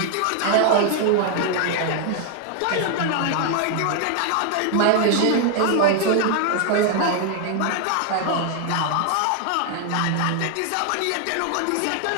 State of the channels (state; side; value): different; both; correlation 0.00